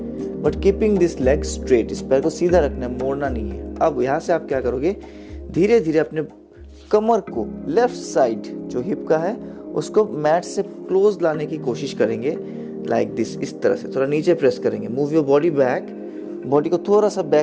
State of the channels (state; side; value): identical; both; correlation 1.00